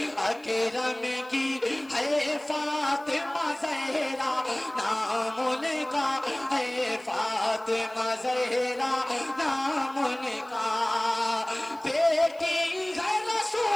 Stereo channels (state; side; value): noise; left; hiss, 29 dB below the sound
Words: اکرم کی ہے فاطمہ زہرا نام ان کا ہے فاطمہ زہرا نام ان کا بیٹی ہے